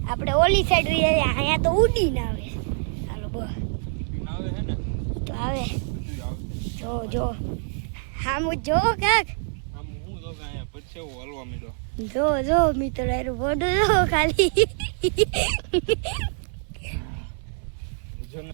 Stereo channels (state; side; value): silent; left; 62 dB below the other